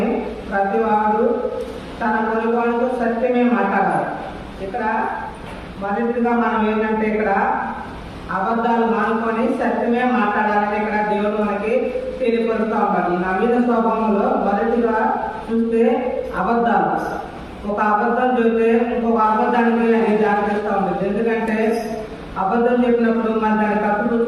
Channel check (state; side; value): identical; both; correlation 1.00